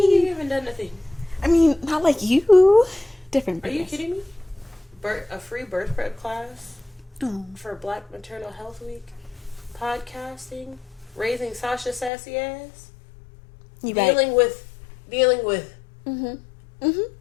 you haven't done nothing? I mean, not like you. Different. Are you kidding me? A free birth prep class for Black Maternal Health Week, podcasting, raising Sasha sassy ass, dealing with dealing with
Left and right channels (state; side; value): drops out; right; at 12.1 s